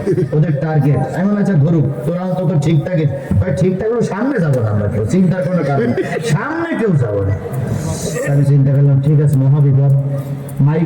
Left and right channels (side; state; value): both; identical; correlation 1.00